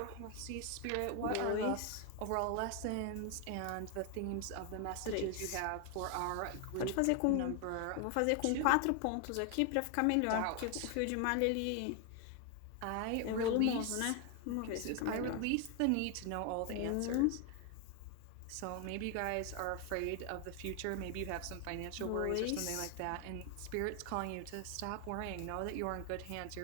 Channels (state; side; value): different; both; correlation 0.01